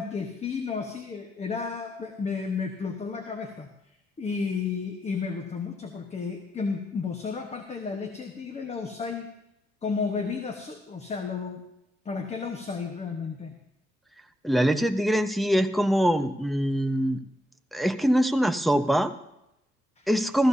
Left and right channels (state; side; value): normal; both; correlation 0.83